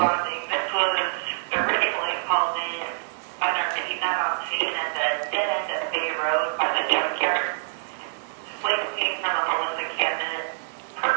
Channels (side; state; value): left; silent; digital silence